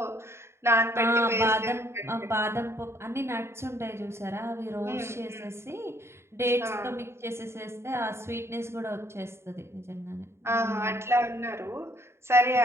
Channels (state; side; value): late; left; 0.13 ms